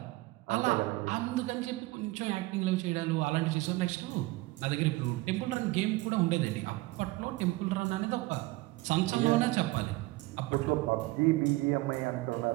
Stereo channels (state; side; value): quieter; left; 20.6 dB